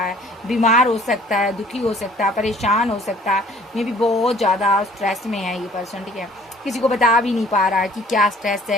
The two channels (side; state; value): both; normal; correlation 0.54